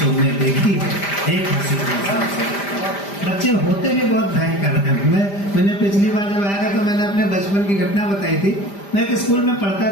में देखी है एक हंसी इंसान सरीखी। बच्चे होते भी बहुत भयंकर हैं। मैंने पिछली बार जब आया था तो मैंने अपने बचपन की घटना बताई थी। मैं एक स्कूल में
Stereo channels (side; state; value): right; late; 5.0 ms